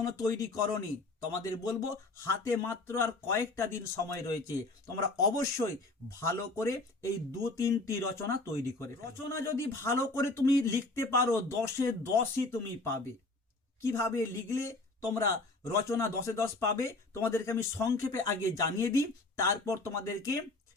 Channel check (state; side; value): quieter; right; 3.1 dB